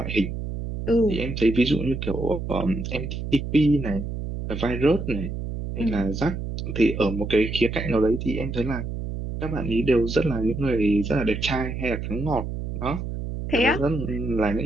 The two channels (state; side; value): noise; right; hum, 5 dB below the sound